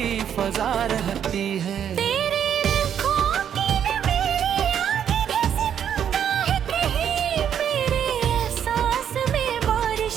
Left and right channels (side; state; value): left; quieter; 8.9 dB